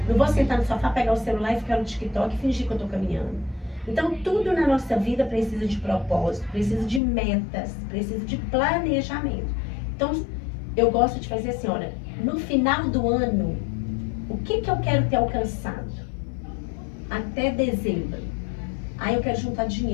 Não vou sentar no sofá, pegar o celular e ficar no TikTok e fingir que eu estou caminhando. Então, tudo na nossa vida precisa de propósito, precisa de metas, precisa de planejamento. Então, eu gosto de fazer assim, olha, no final do ano, o que eu quero ter alcançado? Até dezembro. Aí eu quero juntar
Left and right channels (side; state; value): right; drops out; at 7.0 s